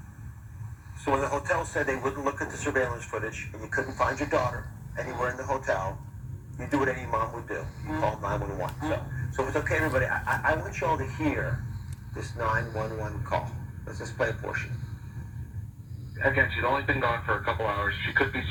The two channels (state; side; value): identical; both; correlation 1.00